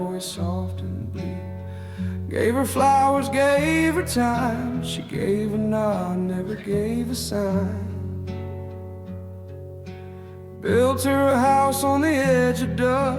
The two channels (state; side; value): identical; both; correlation 1.00